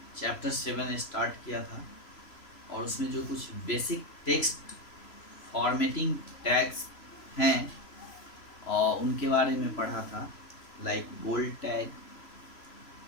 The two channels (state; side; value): late; right; 3.0 ms